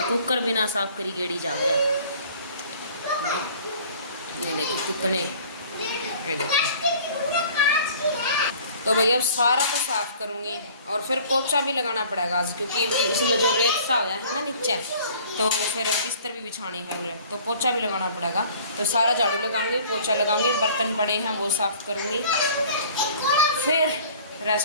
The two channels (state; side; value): inverted; both; correlation -0.50